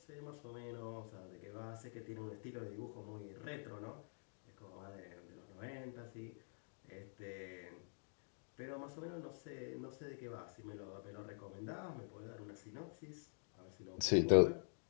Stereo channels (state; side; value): silent; right; digital silence